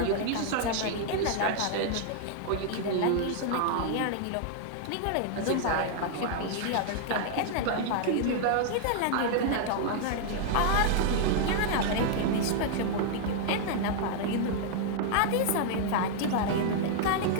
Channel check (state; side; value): different; both; correlation -0.01